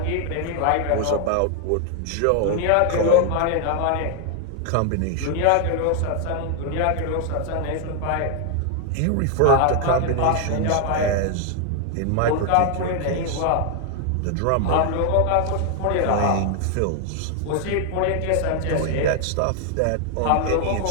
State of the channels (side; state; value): both; different; correlation 0.00